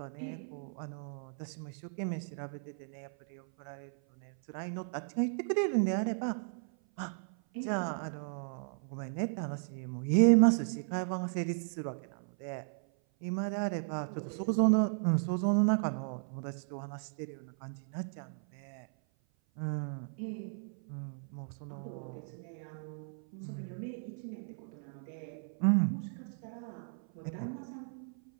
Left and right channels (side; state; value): left; silent; 54 dB below the other